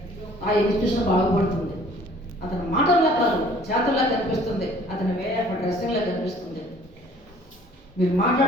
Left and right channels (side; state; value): both; normal; correlation 0.54